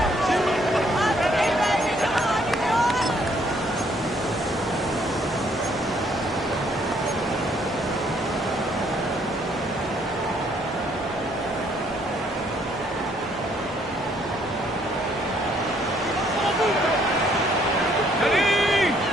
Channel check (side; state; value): both; normal; correlation 0.66